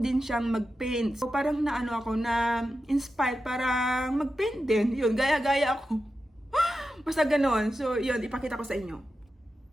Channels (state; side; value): normal; both; correlation 0.91